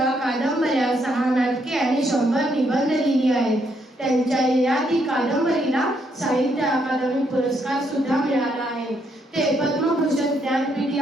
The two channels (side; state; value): both; normal; correlation 0.74